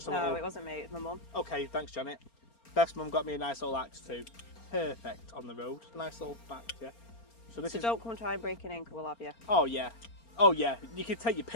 a little... No, it wasn't me, it was my mum. Okay, thanks Janet. Beth's mum got me a nice little axe too. Perfect on the road. Nice little back, yeah. So this is... don't come try and break it in, because we'll have you. Oh yeah. Oh yeah, you can take your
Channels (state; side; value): late; right; 4.3 ms